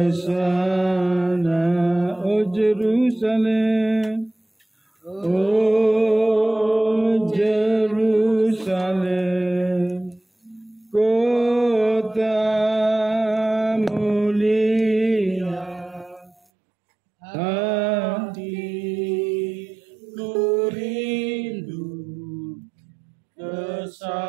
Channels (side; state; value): left; drops out; at 16.4 s